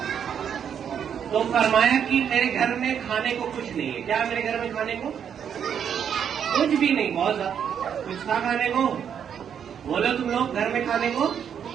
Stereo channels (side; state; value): left; quieter; 8.2 dB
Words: तो फरमाया कि मेरे घर में खाने को कुछ नहीं है। क्या मेरे घर में खाने को? कुछ भी नहीं। बहुत ज्यादा कुछ था खाने को? बोलो तुम लोग, घर में खाने को